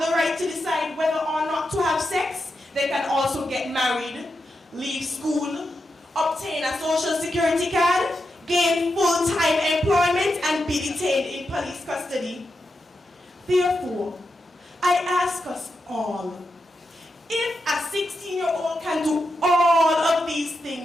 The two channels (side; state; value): both; normal; correlation 0.87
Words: right to decide whether or not to have sex, they can also get married, leave school, obtain a social security card, gain full-time employment, and be detained in police custody. Therefore, I ask us all, if a 16-year-old can do all of these